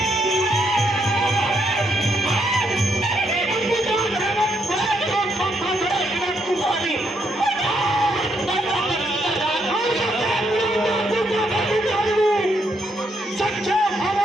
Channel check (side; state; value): both; normal; correlation 0.76